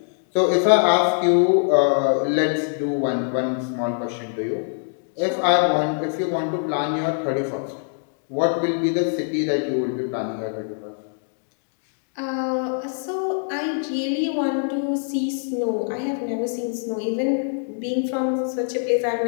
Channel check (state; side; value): silent; right; digital silence